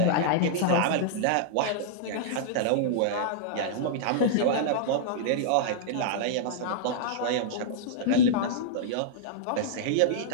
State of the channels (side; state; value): both; different; correlation -0.02